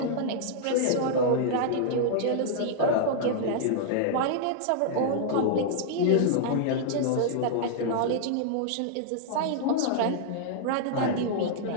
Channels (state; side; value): different; both; correlation -0.01